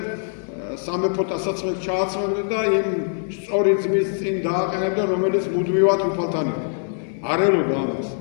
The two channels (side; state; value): right; silent; digital silence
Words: სამეფო ტასაცმელს ჩააცმევდნენ და იმ სწორი ძმის წინ დააყენებდნენ, რომელიც მუდმივად უფალთან იყო. არ ელოდა ამას.